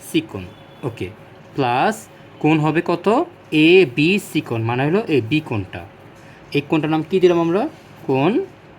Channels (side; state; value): both; identical; correlation 1.00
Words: সি কোণ। ওকে, প্লাস কোণ হবে কত? এ বি সি কোণ, মানে হলো এই বি কোণটা। এই কোণটার নাম কি দিলাম আমরা? কোণ